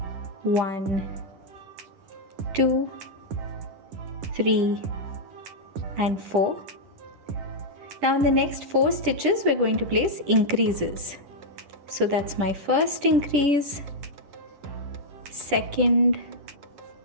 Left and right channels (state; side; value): late; left; 10 ms